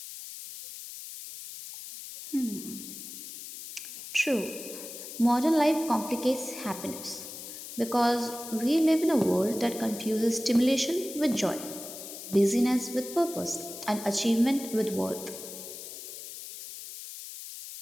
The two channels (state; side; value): noise; left; hiss, 11 dB below the sound